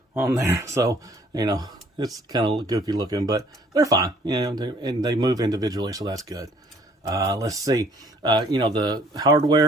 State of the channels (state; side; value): normal; both; correlation 0.59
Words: on there. So, It's kind of goofy looking, but they're fine. You know, and they move individually, so that's good. Let's see. You know, the